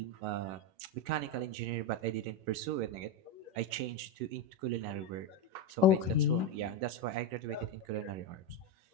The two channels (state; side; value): late; left; 11 ms